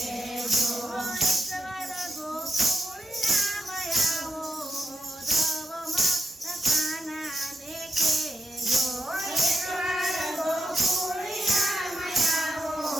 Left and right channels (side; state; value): both; normal; correlation 0.87